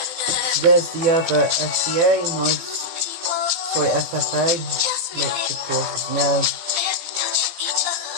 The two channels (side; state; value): left; late; 17 ms